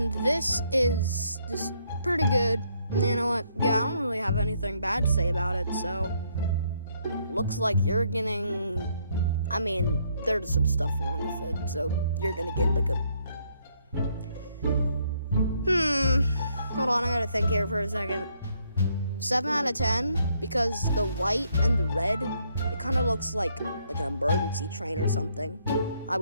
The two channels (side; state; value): both; inverted; correlation -0.71